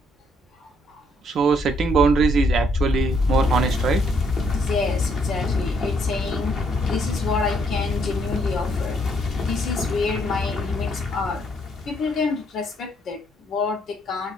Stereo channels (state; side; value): normal; both; correlation 0.70